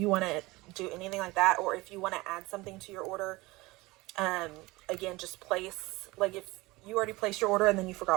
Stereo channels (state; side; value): quieter; left; 21.5 dB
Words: want to do anything like that, or if you want to add something to your order, again, just place, like if you already placed your order and then you